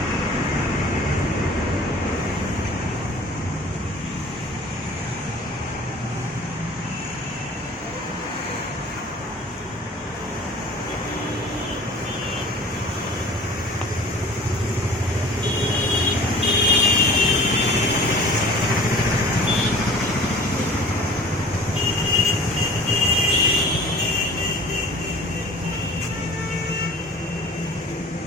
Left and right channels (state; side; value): normal; both; correlation 0.45